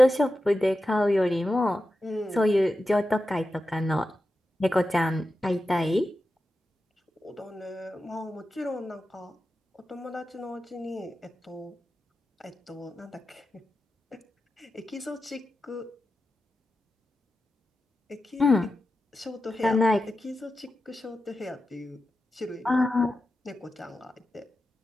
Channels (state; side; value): normal; both; correlation 0.91